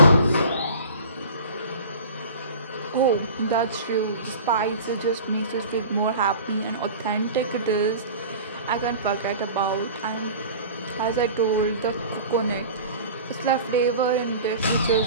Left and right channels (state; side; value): inverted; both; correlation -0.39